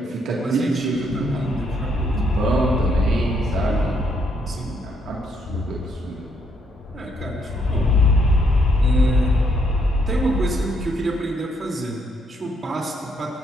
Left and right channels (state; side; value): normal; both; correlation 0.72